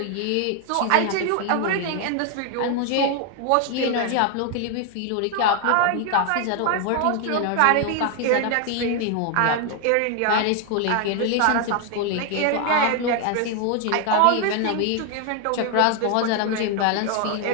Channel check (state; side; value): different; both; correlation 0.01